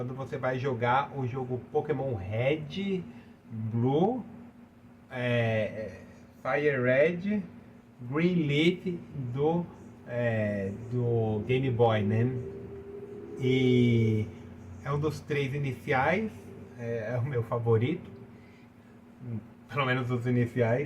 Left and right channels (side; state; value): both; identical; correlation 1.00